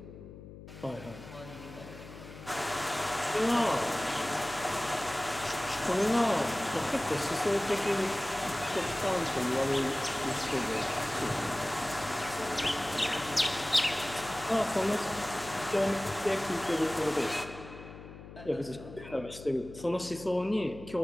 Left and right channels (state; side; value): noise; left; hum, 15 dB below the sound